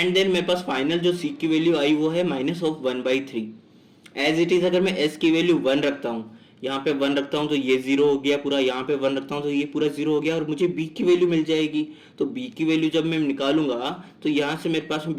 देन मेरे पास फाइनल जो सी की वैल्यू आई वो है -1/3। एज इट इज अगर मैं एस की वैल्यू 1 रखता हूँ, यहाँ पे 1 रखता हूँ तो ये जीरो हो गया पूरा, यहाँ पे 1 रखता हूँ तो ये पूरा जीरो हो गया और मुझे बी की वैल्यू मिल जाएगी। तो बी की वैल्यू जब मैं निकालूंगा तो यहाँ से मेरे पास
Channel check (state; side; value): identical; both; correlation 1.00